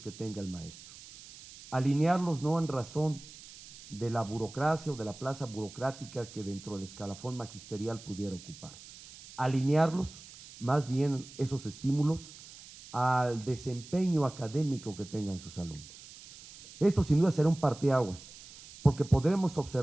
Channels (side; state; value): right; noise; hiss, 18 dB below the sound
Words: tenga el maestro. Alinearlos no en razón de la burocracia o de la plaza burocrática que dentro del escalafón magisterial pudiera ocupar. Alinearlos, más bien esos estímulos, al desempeño académico que tengan sus alumnos. Esto sin duda será un parteaguas, porque podremos